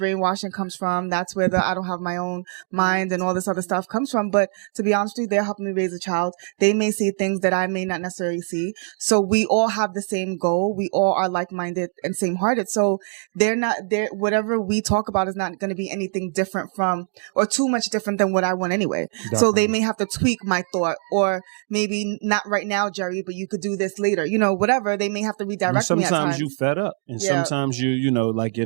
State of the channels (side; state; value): left; silent; digital silence